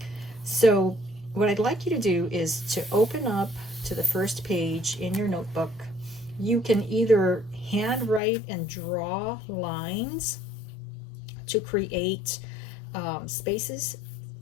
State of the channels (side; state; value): right; drops out; at 8.2 s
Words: So what I'd like you to do is to open up to the first page in your notebook. You can either handwrite and draw lines to create spaces